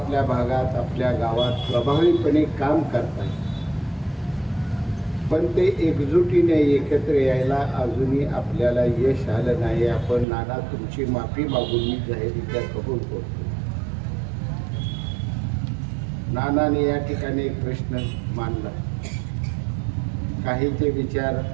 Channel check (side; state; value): left; drops out; at 10.2 s